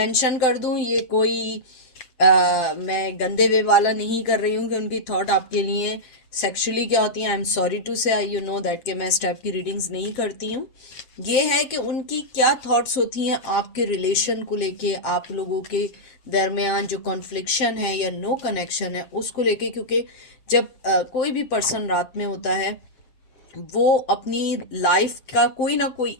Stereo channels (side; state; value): right; late; 7.7 ms